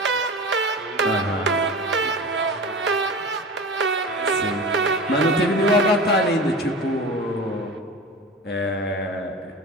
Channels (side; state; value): both; normal; correlation 0.31